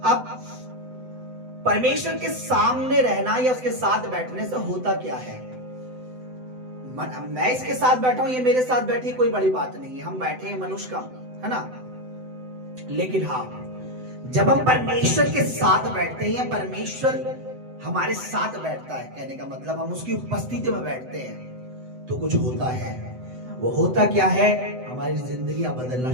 अब परमेश्वर के सामने रहना या उसके साथ बैठने से होता क्या है? मैं इसके साथ बैठा हूं, ये मेरे साथ बैठी, कोई बड़ी बात नहीं है, हम बैठे हैं, मनुष्य का है ना। लेकिन हाँ, जब हम परमेश्वर के साथ बैठते हैं, परमेश्वर हमारे साथ बैठता है, कहने का मतलब हम उसकी उपस्थिति में बैठते हैं, तो कुछ होता है। वो होता क्या है? हमारी जिंदगी बदलना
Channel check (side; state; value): left; late; 7.9 ms